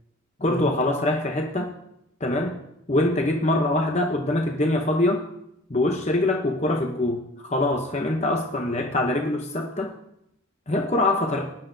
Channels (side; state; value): both; normal; correlation 0.46